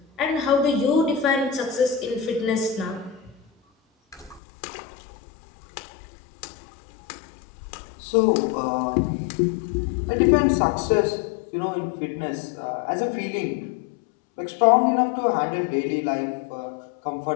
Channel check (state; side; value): drops out; right; at 4.4 s